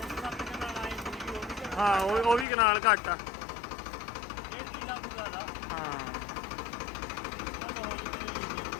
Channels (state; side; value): drops out; right; at 2.5 s